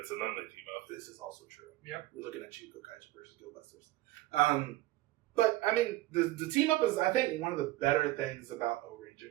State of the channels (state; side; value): quieter; left; 17.4 dB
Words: and then they team up. this is also true. Yep. We're looking at Chico Kaiser versus Go Busters. But I mean, the team up is, I think, one of the better things about Ohranger,